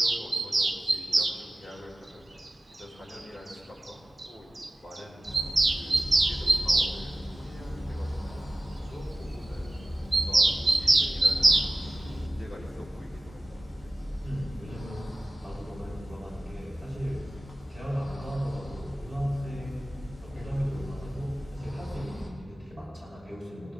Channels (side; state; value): both; normal; correlation 0.96